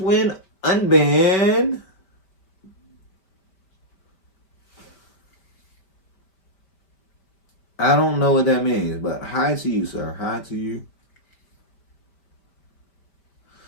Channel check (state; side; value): late; right; 5.1 ms